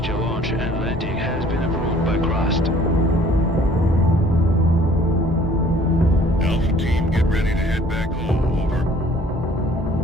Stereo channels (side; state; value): both; normal; correlation 0.55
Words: launch and landing has been approved by Crust. Alpha team, get ready to head back home. Over.